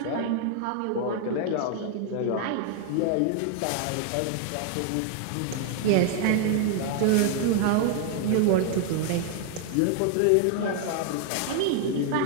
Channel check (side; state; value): both; different; correlation 0.00